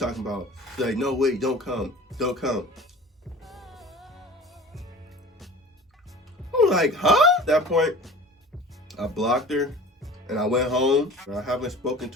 about, she's like, no, wait, don't come. Don't come. I'm like, huh? At that point, I blocked her, and I went home, and I haven't spoken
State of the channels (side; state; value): both; normal; correlation 0.41